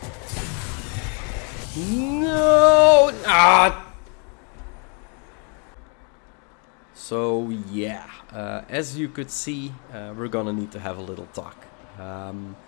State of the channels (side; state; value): right; quieter; 38.1 dB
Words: No! Ah! So yeah, as you could see, we're gonna need to have a little talk.